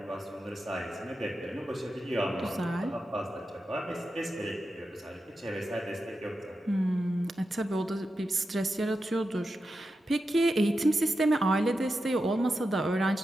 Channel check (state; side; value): normal; both; correlation 0.89